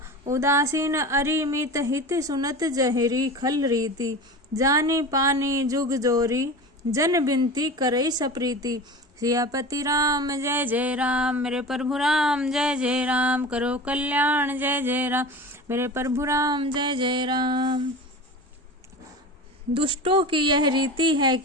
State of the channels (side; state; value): both; normal; correlation 0.32